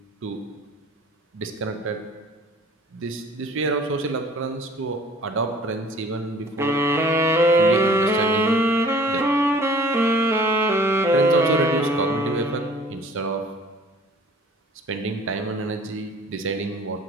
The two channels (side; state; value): both; normal; correlation 0.50